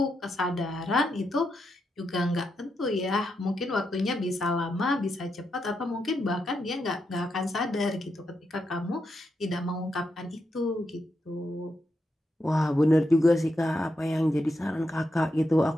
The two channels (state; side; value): normal; both; correlation 0.84